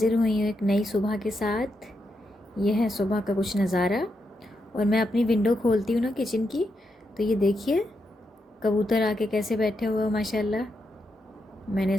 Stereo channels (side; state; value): both; normal; correlation 0.83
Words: हुई हूँ एक नई सुबह के साथ। यह है सुबह का कुछ नज़ारा। और मैं अपनी विंडो खोलती हूँ ना किचन की, तो ये देखिए कबूतर आके कैसे बैठे हुए हो माशाल्लाह। मैंने